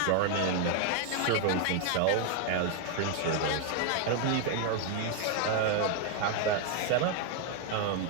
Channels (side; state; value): both; different; correlation 0.01